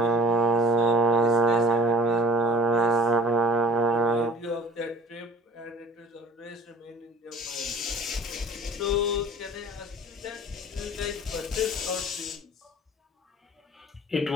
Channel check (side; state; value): both; normal; correlation 0.47